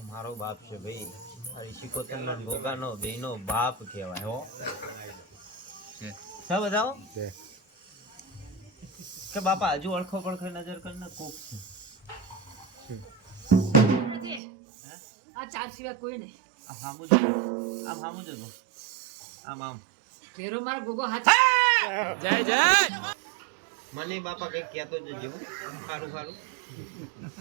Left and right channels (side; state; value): left; drops out; at 14.4 s